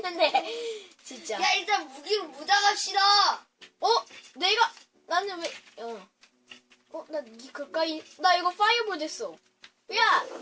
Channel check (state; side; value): identical; both; correlation 1.00